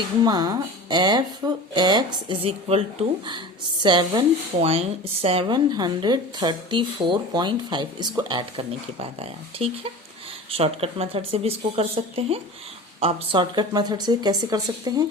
f x is equal to 734.5 इसको ऐड करने के बाद आया, ठीक है। शॉर्टकट मेथड से भी इसको कर सकते हैं। आप शॉर्टकट मेथड से कैसे कर सकते हैं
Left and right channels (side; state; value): both; normal; correlation 0.35